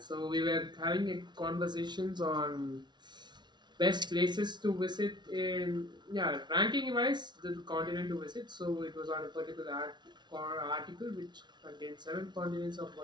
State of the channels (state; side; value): late; left; 0.21 ms